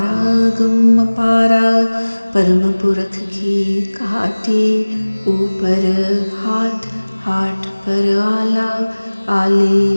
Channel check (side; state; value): both; inverted; correlation -1.00